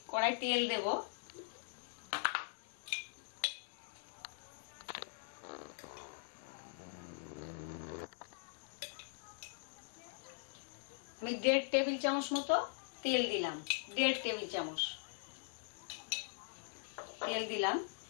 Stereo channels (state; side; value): silent; right; digital silence